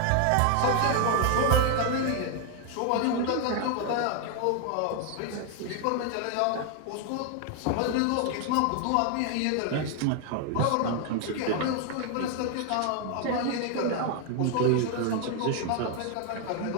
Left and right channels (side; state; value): both; different; correlation 0.00